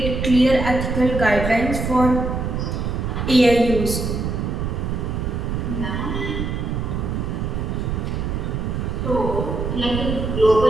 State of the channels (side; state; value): right; noise; rumble, 2 dB below the sound